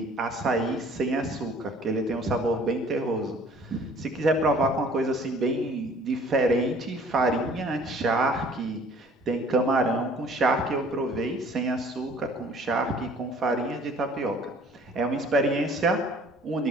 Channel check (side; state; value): both; normal; correlation 0.53